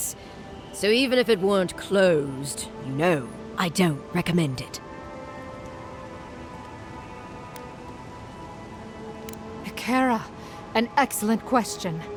So even if it weren't closed, you know, I don't recommend it. Kara, an excellent question.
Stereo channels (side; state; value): both; identical; correlation 1.00